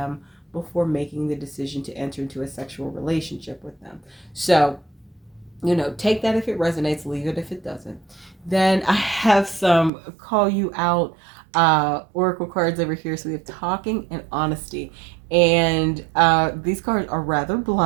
before making the decision to enter into a sexual relationship with them. So, take that if it resonates, leave it if it doesn't. Then I have some call you out oracle cards over here. So we have talking and honesty. And these cards are rather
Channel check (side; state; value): left; drops out; at 9.9 s